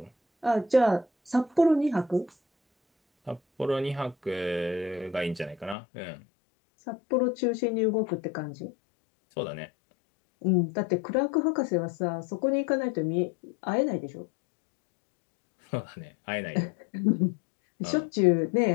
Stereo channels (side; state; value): right; drops out; at 5.8 s